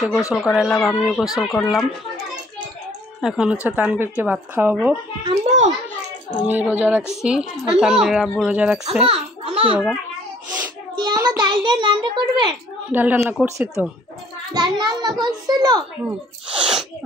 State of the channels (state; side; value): normal; both; correlation 0.58